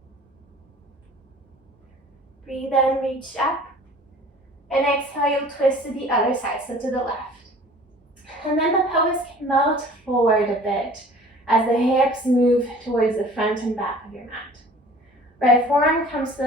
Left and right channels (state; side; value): normal; both; correlation 0.48